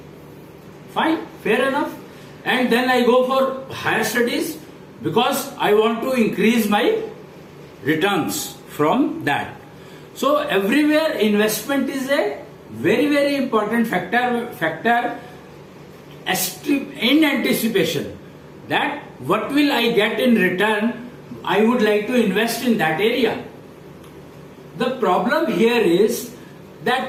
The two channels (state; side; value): identical; both; correlation 1.00